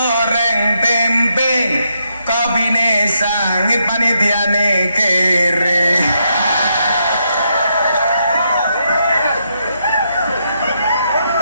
tempe kabine sangit panitiane kere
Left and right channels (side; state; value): both; inverted; correlation -0.79